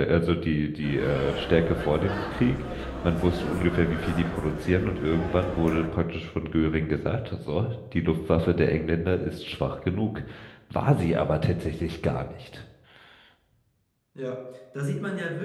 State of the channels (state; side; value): identical; both; correlation 1.00